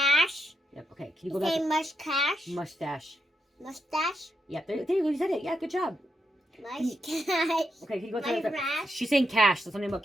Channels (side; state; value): both; normal; correlation 0.81